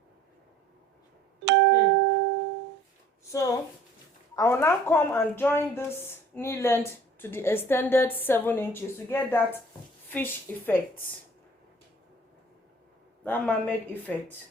I will now come and join this knee length to the extended 7 inches to get that fish effect, that mermaid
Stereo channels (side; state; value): both; normal; correlation 0.52